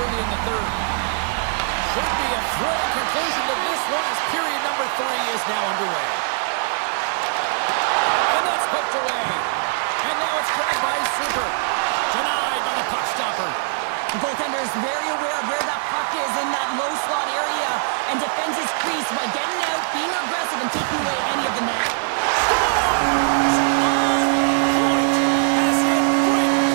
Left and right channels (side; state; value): left; silent; 65 dB below the other